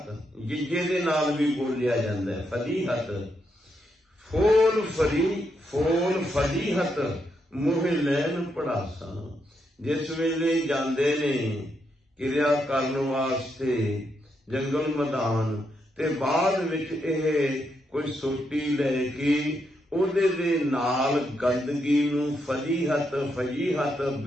ਜਿੱਜੇ ਦੇ ਨਾਲ ਵੀ ਬੋਲਿਆ ਜਾਂਦਾ ਹੈ, ਫਲੀਹਤ। ਫੋਲ ਫਲੀ, ਫੋਲ ਫਲੀਹਤ ਮੋਹ ਲੈਣ ਪੜਾਸਾਂ। ਜਿਸ ਵੇਲੇ ਜਾਂਦੇ ਨੇ ਕਿਰਿਆ ਕਰਨ ਵਾਸਤੇ ਜੰਗਲ ਮੈਦਾਨ, ਤੇ ਬਾਅਦ ਵਿੱਚ ਇਹ ਕੋਈ ਸੋਟੀ ਲੈ ਕੇ ਉਹਦੇ ਦੇ ਨਾਲ ਗੰਦਗੀ ਨੂੰ, ਫਲੀਹਤ ਫਲੀਹਤ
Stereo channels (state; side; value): normal; both; correlation 0.80